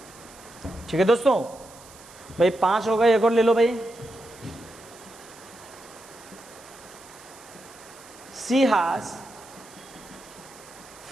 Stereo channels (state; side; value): noise; right; hiss, 21 dB below the sound